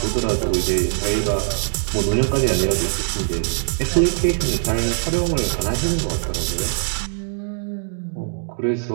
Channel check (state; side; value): silent; left; digital silence